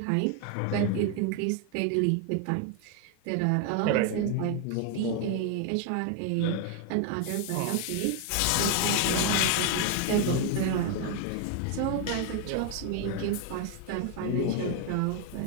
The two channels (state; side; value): different; both; correlation 0.01